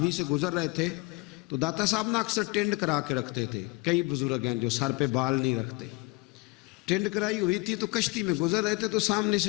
سے گزر رہے تھے تو داتا صاحب نا اکثر ٹینڈ کرا کے رکھتے تھے. کئی بزرگ ہیں جو سر پہ بال نہیں رکھتے, ٹینڈ کرائی ہوئی تھی تو کشتی میں گزر رہے تھے تو سامنے سے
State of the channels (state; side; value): quieter; right; 25.9 dB